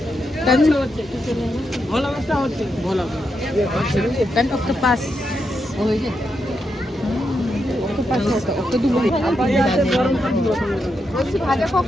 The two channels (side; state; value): both; normal; correlation 0.84